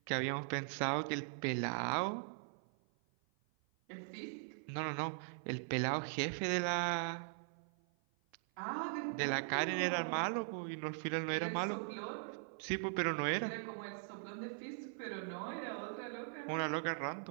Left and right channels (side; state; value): left; silent; 51 dB below the other